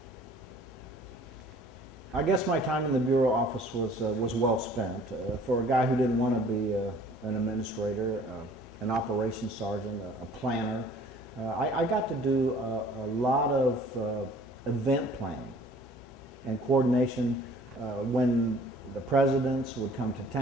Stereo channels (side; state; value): both; normal; correlation 0.52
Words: I guess my time in the bureau office was well spent. For a guy who didn't want to be an administrator, an operations sergeant, a planner, I got to do a lot of event planning and coordination. When the presidents would come to